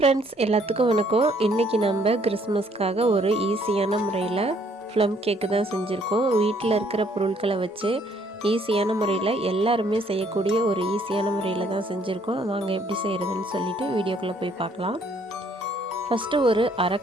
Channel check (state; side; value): normal; both; correlation 0.65